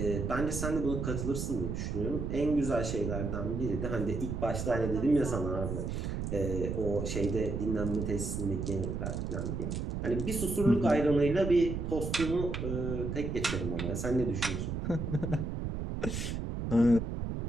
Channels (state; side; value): noise; right; rumble, 3 dB below the sound